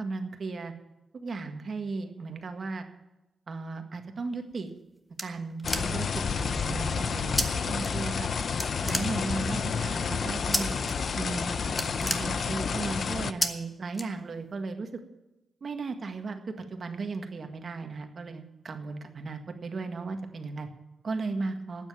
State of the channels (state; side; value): normal; both; correlation 0.85